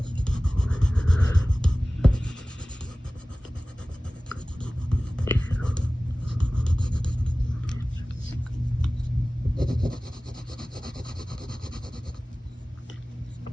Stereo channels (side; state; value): both; normal; correlation 0.97